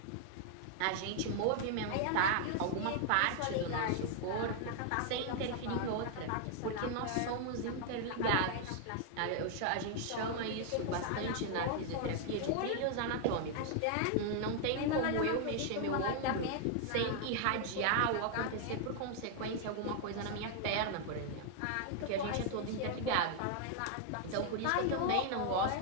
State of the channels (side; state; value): both; different; correlation 0.00